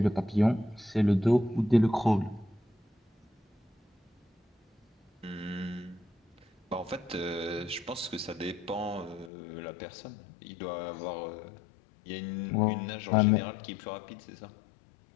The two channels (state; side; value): drops out; right; at 9.3 s